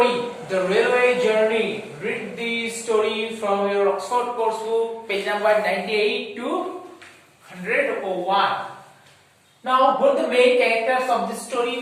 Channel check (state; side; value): identical; both; correlation 1.00